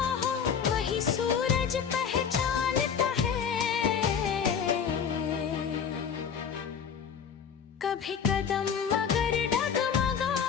हो वही सूरज पहचानता है। कभी कदम मगर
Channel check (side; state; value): right; quieter; 7.2 dB